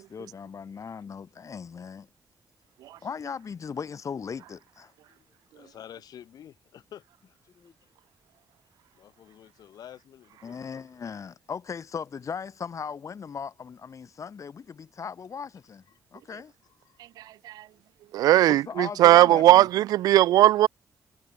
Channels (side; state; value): left; quieter; 11.1 dB